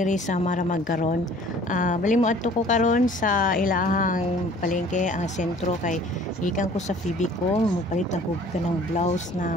sa Maramag karon. Bali mo adto ko karon sa ilahang palengke ang sentro kay gikan ko sa Phoebe ko, mupalit lang ko kanang blouse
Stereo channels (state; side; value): normal; both; correlation 0.51